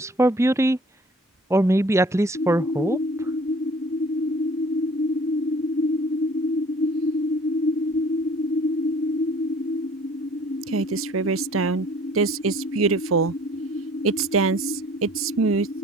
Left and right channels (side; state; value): both; normal; correlation 0.52